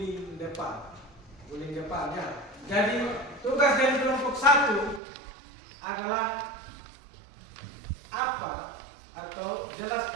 depan, ya. Jadi tugas dari kelompok 1 adalah apa atau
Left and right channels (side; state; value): left; drops out; at 5.0 s